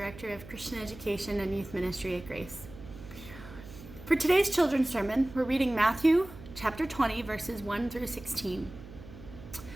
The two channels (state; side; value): noise; right; hum, 16 dB below the sound